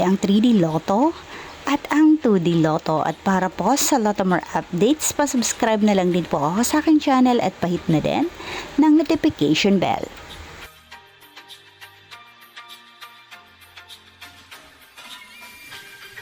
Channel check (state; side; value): identical; both; correlation 1.00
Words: 3D Lotto at ang 2D Lotto. At para po sa Lotto More updates, pa-subscribe na lang din po ako sa aking channel at pahit na din ng notification bell.